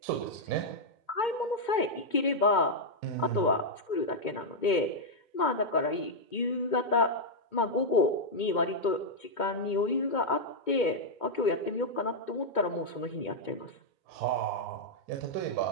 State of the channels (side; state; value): right; late; 2.2 ms